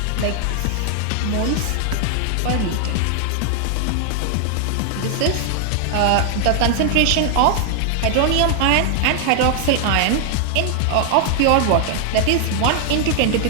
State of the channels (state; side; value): different; both; correlation 0.00